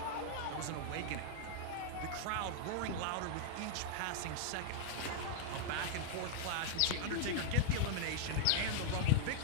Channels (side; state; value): both; different; correlation -0.01